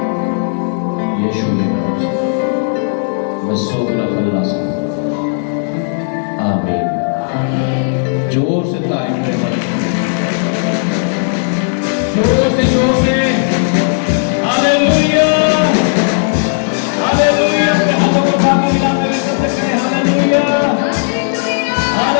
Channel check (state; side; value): silent; right; digital silence